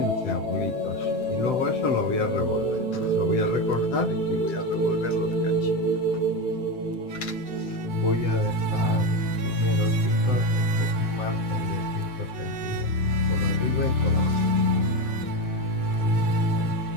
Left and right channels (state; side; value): late; right; 7.7 ms